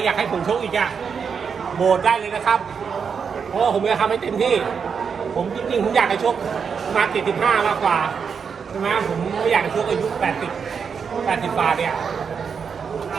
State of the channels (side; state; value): left; quieter; 6.3 dB